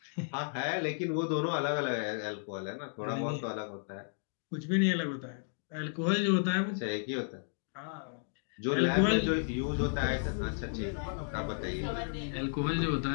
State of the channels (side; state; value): right; silent; digital silence